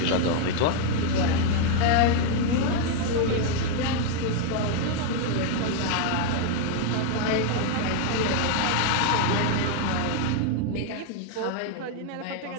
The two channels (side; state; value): both; different; correlation 0.00